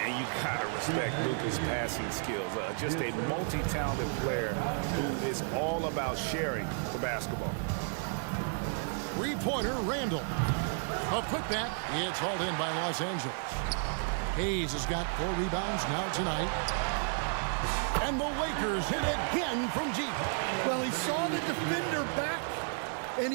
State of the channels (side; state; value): left; silent; 56 dB below the other